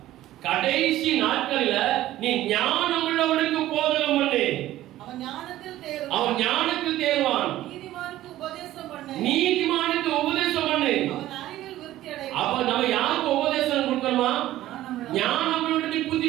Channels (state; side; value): quieter; left; 14.6 dB